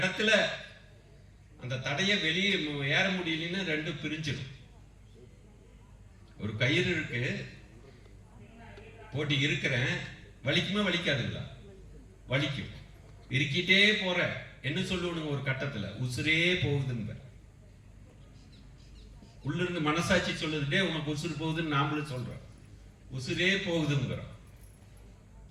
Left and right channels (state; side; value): identical; both; correlation 1.00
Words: அந்த தடையை வெளியே ஏற முடியலன்னு 2 பிரிஞ்சிடும். ஒரு கயிறு இருக்கு, போட்டி இருக்கிறேன், வலிக்குமே வலிக்காதுங்களா? வலிக்கும். இருக்கிட்டே போற என்ன சொல்லுவனுங்க? ஒரு கட்டத்துல உசுரே போகுதுன்னு உள்ள இருந்து மனசாட்சி சொல்லுதுட்டே உனக்கு உசுறு போகுதுன்னு நாமளும் சொல்றோம். உசுரே போகுதுங்கிறோம்.